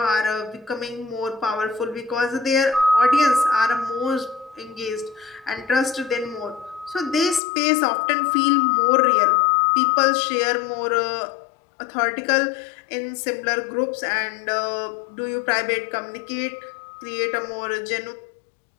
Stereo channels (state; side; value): drops out; right; at 7.4 s